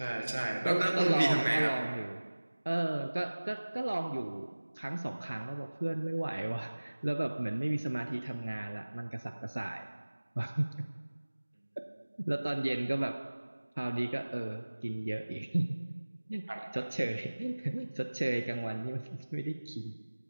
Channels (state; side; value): inverted; both; correlation -1.00